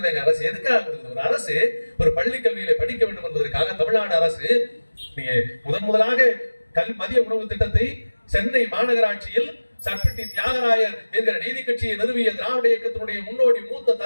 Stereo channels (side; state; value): both; inverted; correlation -1.00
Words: அரசு எதுக்காக கொடுக்குது? ஒரு அரசு ஒரு பள்ளி கல்வியில படிக்க வேண்டும் என்பதற்காக தமிழ்நாடு அரசு நீங்க முதலாக மதிய உணவு திட்டத்தை சென்னை மாநகராட்சியில் சர்பிட்டி தியாகராயர் என்கிற நீதி கட்சியை நிறுவிய திராவிட இயக்கத்தினுடைய முன்னோடி மூத்த